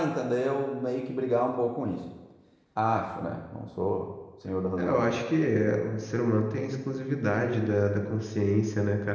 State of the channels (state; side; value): identical; both; correlation 1.00